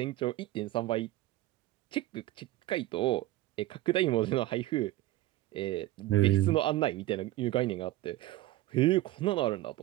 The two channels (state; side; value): quieter; left; 16.1 dB